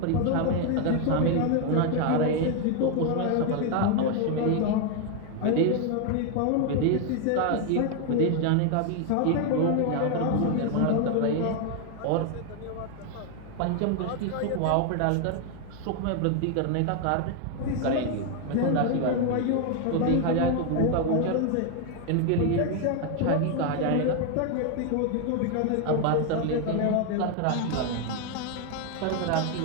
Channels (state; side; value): different; both; correlation 0.01